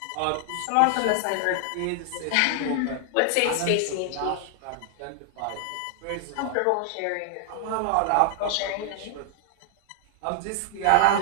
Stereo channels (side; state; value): both; different; correlation -0.01